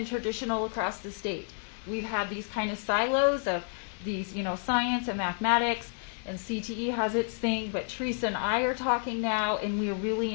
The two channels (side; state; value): right; silent; 58 dB below the other